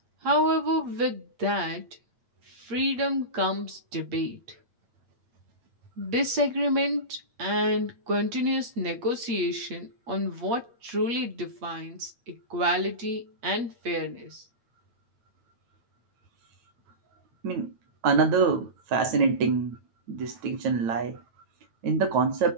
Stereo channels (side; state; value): left; late; 8.5 ms